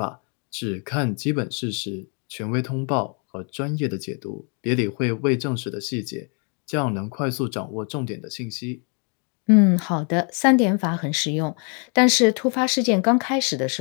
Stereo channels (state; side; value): quieter; right; 37.9 dB